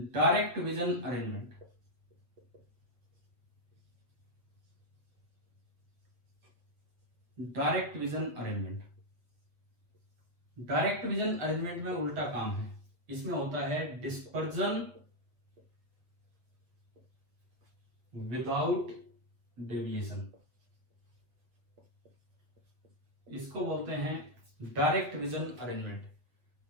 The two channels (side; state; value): left; late; 8.1 ms